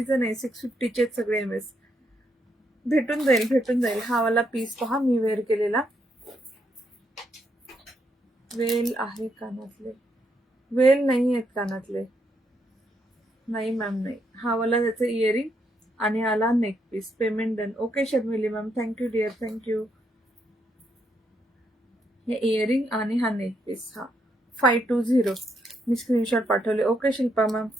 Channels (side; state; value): both; normal; correlation 0.77